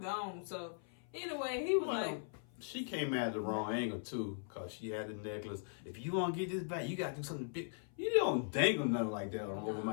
So anyway, he was like, she came at the wrong angle too, cause she had the necklace. If you want to get this back, you gotta do something big. You don't dangle nothing like that over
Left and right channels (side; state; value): right; silent; 51 dB below the other